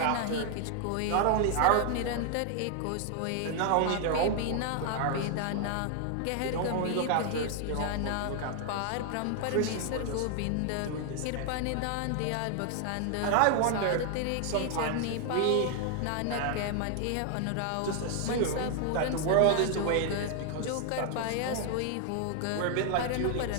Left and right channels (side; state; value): both; different; correlation 0.00